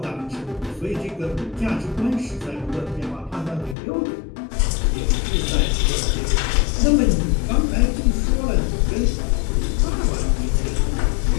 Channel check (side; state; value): right; drops out; at 3.8 s